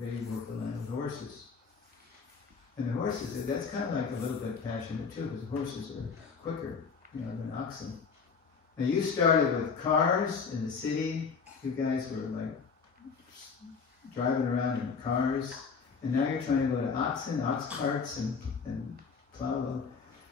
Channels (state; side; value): quieter; right; 5.5 dB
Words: They worked the land with the horses. And the horses, that's kind of like a little bit passionate too, because horses are quicker, than oxen. And you started with cars in the city. You guys were like driving around in cars. And now you're trying to go to oxen, ox carts, and plow.